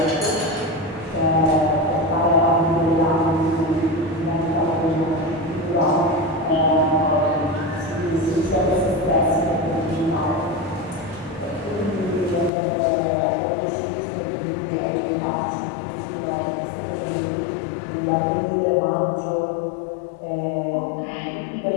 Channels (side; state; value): right; drops out; at 12.5 s